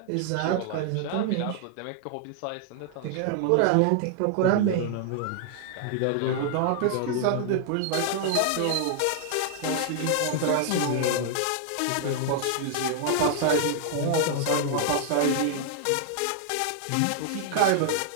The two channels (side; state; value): both; different; correlation 0.00